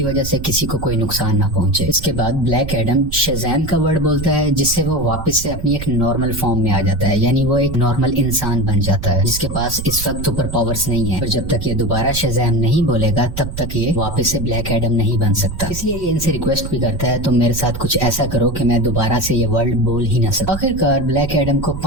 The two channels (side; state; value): right; noise; rumble, 8 dB below the sound